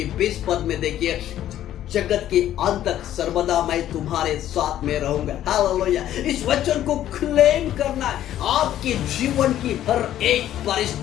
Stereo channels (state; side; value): quieter; right; 12.1 dB